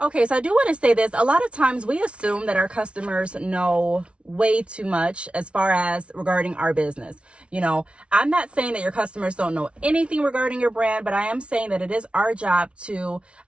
Okay, so I do want to say this. A lot of times we assume that our customers know way too much as far as regarding our business. You know, I'm not saying that your customers don't know anything regarding your brand, but I am saying that it is our job to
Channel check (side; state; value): left; late; 0.060 ms